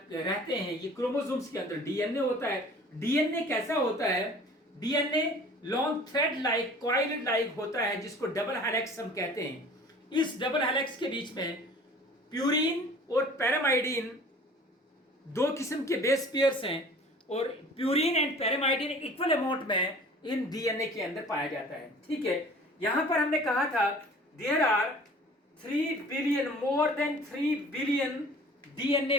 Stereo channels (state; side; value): normal; both; correlation 0.47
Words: हैं। ये क्रोमोसोम्स के अंदर डीएनए होता है। डीएनए कैसा होता है? DNA long thread like, coil like होता है, जिसको डबल हेलिक्स हम कहते हैं। इस डबल हेलिक्स के बीच में प्यूरिन और पैरामाइडिन दो किस्म के बेस पेयर्स हैं, और प्यूरिन एंड पैरामाइडिन इक्वल अमाउंट में इन डीएनए के अंदर पाया जाता है। ठीक है, यहां पर हमने कहा था there are 3 billion, more than 3 billion DNA